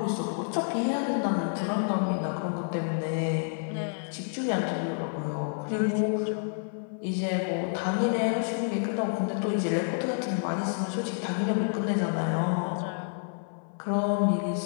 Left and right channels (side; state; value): right; silent; 59 dB below the other